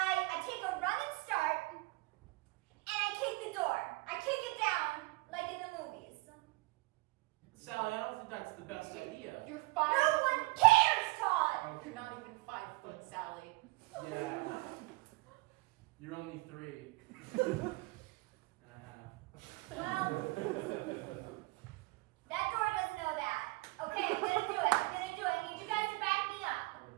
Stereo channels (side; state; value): left; quieter; 23.5 dB